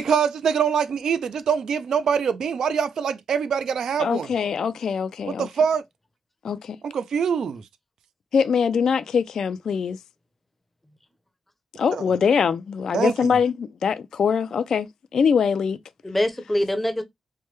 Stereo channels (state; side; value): normal; both; correlation 0.76